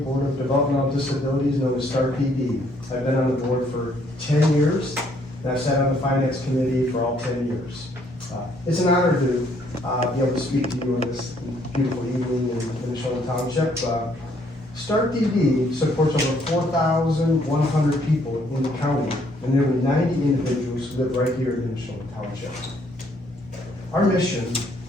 of Developmental Disabilities, known as Stark PD. I've been on the board for 10 years, and I've sat on the finance committee for all 10 years. It's an honor to be able to speak to you on this beautiful evening in Nimishillen Township. Stark DD supports over 4,100 people in the county and nearly 90 individuals who live right here in Nimishillen Township. Our mission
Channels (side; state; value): both; normal; correlation 0.67